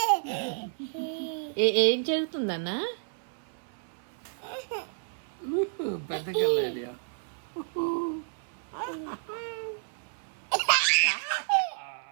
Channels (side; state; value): left; silent; 57 dB below the other